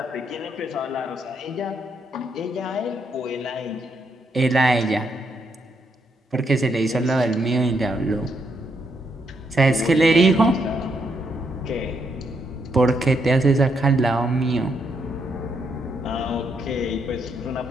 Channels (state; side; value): normal; both; correlation 0.77